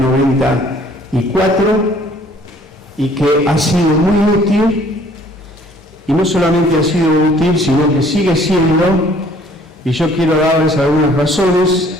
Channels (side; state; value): both; normal; correlation 0.58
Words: 94 y que ha sido muy útil, y no solamente ha sido útil, sino que sigue siendo, y yo quiero darles algunas razones